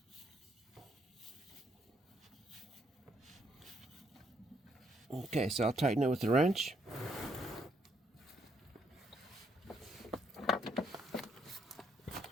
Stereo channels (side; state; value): both; normal; correlation 0.72